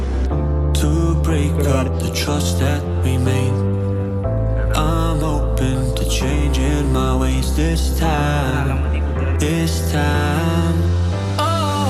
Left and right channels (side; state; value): both; identical; correlation 1.00